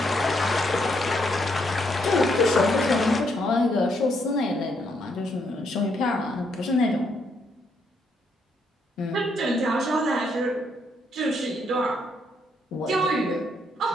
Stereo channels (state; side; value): normal; both; correlation 0.74